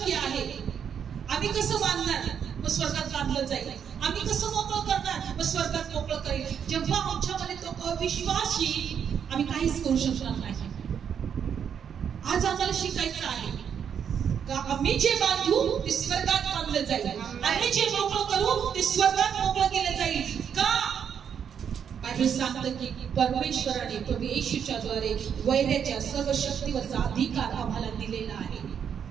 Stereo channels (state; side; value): quieter; left; 7.9 dB